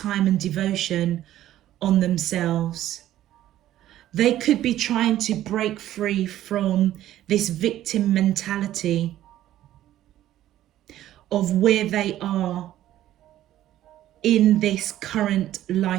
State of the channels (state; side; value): quieter; left; 13.2 dB